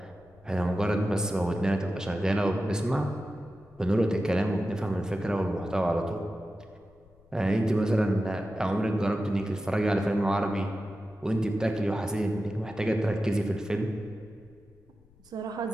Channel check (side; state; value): left; noise; rumble, 28 dB below the sound